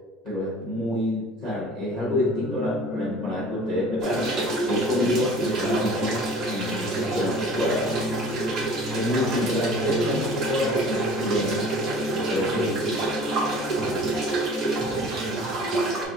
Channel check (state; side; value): normal; both; correlation 0.46